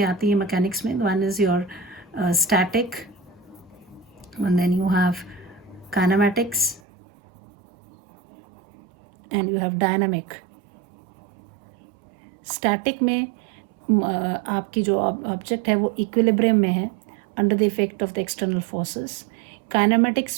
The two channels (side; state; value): left; drops out; at 6.8 s